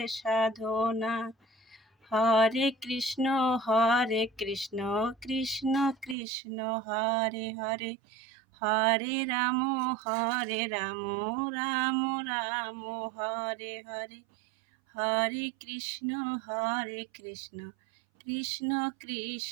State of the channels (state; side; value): drops out; left; at 6.2 s